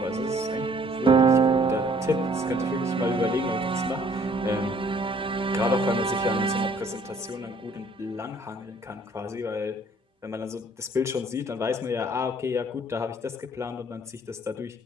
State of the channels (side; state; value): both; normal; correlation 0.59